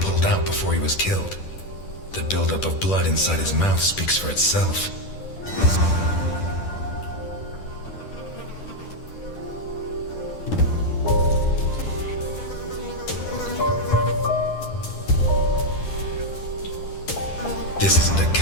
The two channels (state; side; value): late; right; 10 ms